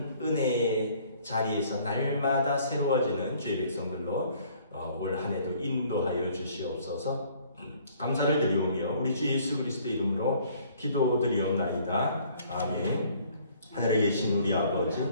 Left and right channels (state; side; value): inverted; both; correlation -0.58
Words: 은혜의 자리에서 날마다 새로워지는 주의 백성들로 올 한 해도 인도하여 주시옵소서. 감사를 드리오며 우리 주 예수 그리스도의 이름으로 기도드리옵나이다. 아멘. 하늘에 계신 우리